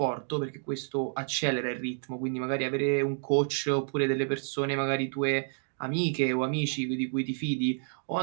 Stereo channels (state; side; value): silent; left; digital silence